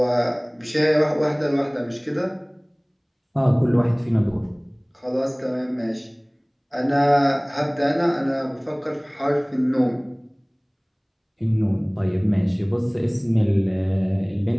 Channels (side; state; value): both; identical; correlation 1.00